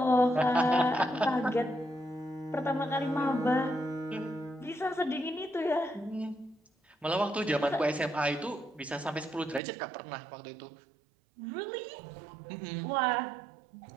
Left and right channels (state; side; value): drops out; left; at 9.6 s